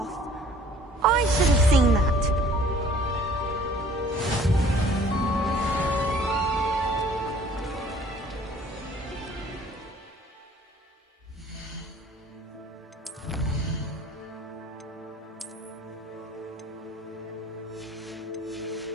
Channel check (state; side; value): normal; both; correlation 0.54